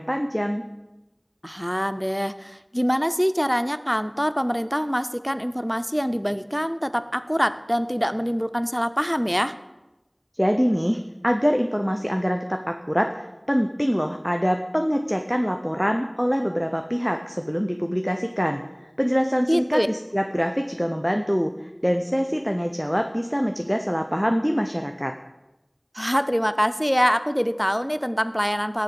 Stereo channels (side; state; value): both; identical; correlation 1.00